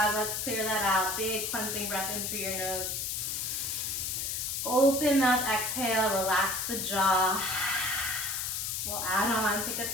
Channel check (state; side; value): noise; left; hiss, 2 dB below the sound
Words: let's clear that out. Big cleansing breath in through your nose. Open mouth, exhale, relax the jaw. We'll add on, pick up